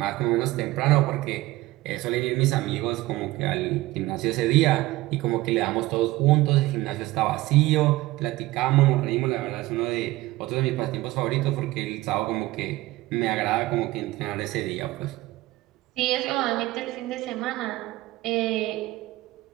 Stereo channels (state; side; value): quieter; left; 18.3 dB